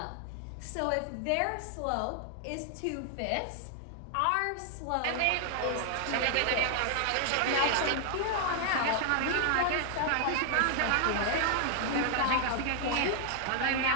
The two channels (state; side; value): different; both; correlation 0.00